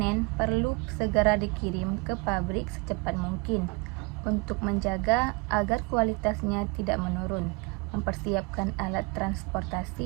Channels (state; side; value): quieter; left; 28.8 dB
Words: perlu segera dikirim ke pabrik secepat mungkin untuk menjaga agar kualitasnya tidak menurun. Mempersiapkan alat